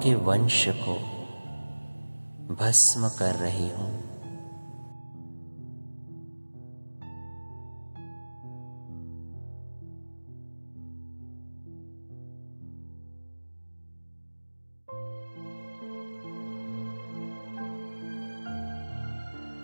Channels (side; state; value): both; inverted; correlation -1.00